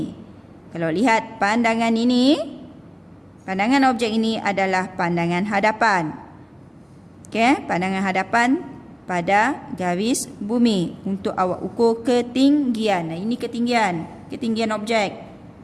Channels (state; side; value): identical; both; correlation 1.00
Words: Kalau lihat pandangan ini, pandangan objek ini adalah pandangan hadapan. Okey, pandangan hadapan pada garis bumi untuk awak ukur ketinggian. Nah, ini ketinggian objek.